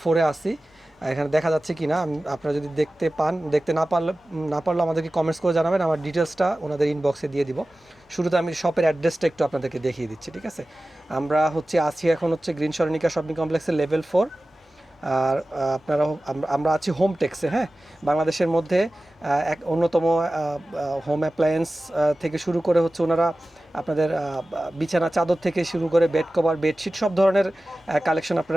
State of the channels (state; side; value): normal; both; correlation 0.96